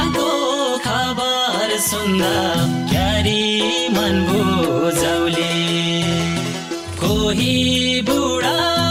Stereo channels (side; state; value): both; identical; correlation 1.00